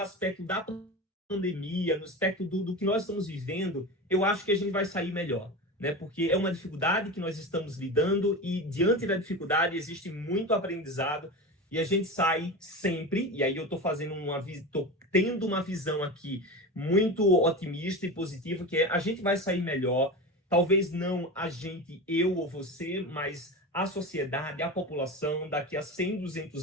da pandemia, no aspecto do que nós estamos vivendo, eu acho que a gente vai sair melhor, né? Porque é uma dificuldade que nós estamos lidando e diante da dificuldade existe muito aprendizado e a gente sai sempre, e aí eu tô tendo uma visão aqui muito otimista e positiva, que a gente vai sair melhor, talvez não a gente, eu ou você, mas a sociedade, a população, daqui a 100,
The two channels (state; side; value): normal; both; correlation 0.26